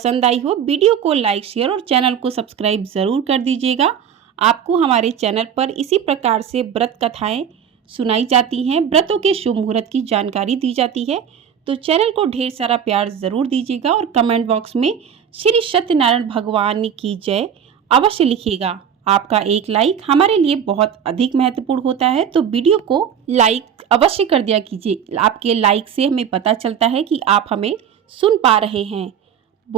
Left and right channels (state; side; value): quieter; left; 8.2 dB